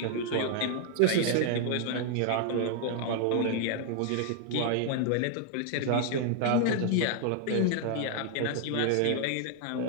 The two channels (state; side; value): different; both; correlation 0.00